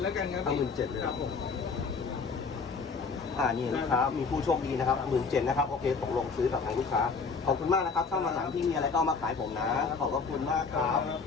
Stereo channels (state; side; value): quieter; right; 4.9 dB